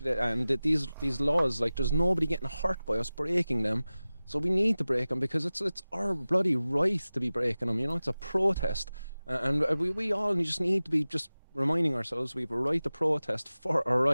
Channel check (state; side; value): inverted; both; correlation -0.97